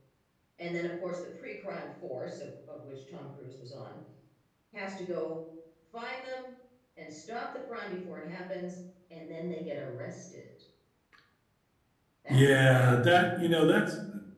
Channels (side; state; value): both; identical; correlation 1.00